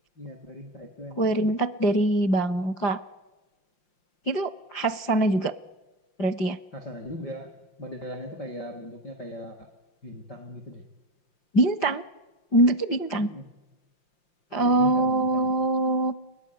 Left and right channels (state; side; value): late; right; 5.7 ms